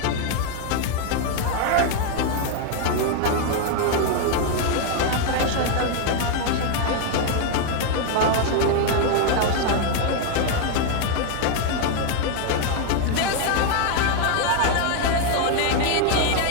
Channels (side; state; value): both; different; correlation 0.01